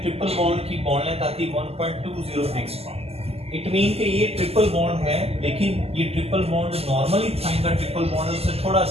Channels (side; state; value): left; late; 0.29 ms